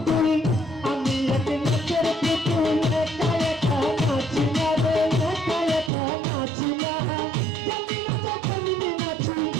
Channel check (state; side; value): drops out; left; at 5.9 s